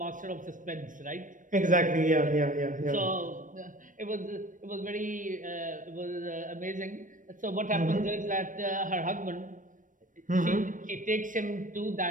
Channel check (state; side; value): late; left; 0.38 ms